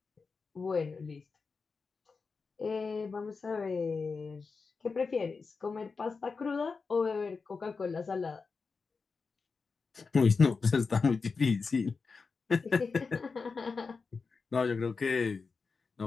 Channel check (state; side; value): quieter; right; 4.7 dB